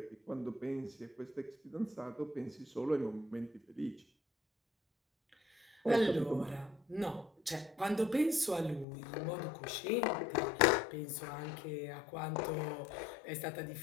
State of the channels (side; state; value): right; drops out; at 8.8 s